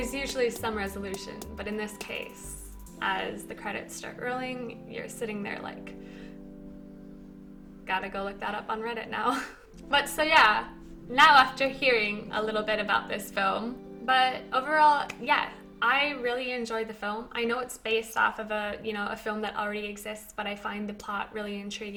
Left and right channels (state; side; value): identical; both; correlation 1.00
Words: usually some resolution. But in this case, as the credits start rolling, you're sitting there like, gotta go look that up on Reddit now. But so yeah, now after hearing a little bit about this film, but overall, yeah, I really enjoyed the film. I know it's based off of a film that already exists, but I find the plot really